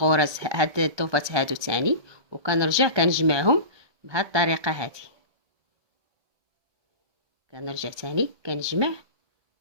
هاد الضوفات هادو تاني، وكنرجع كنجمعهم بهاد الطريقه هذه. كنرجع تاني كنجمع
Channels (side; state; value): left; late; 1.3 ms